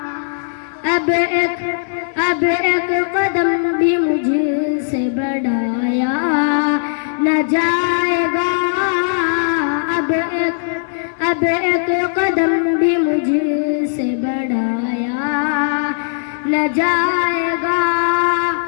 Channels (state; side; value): silent; right; 68 dB below the other